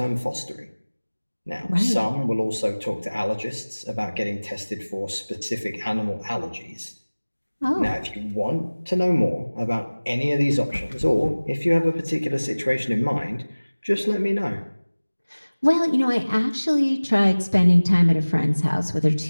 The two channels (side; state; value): both; inverted; correlation -1.00